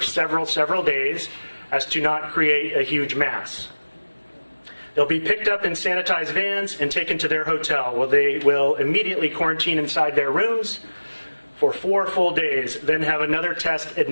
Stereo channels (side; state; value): both; inverted; correlation -1.00